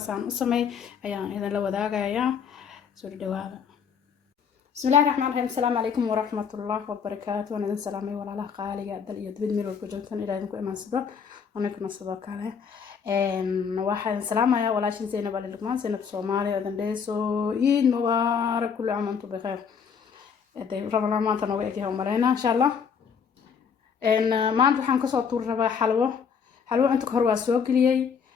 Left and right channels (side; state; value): right; quieter; 6.6 dB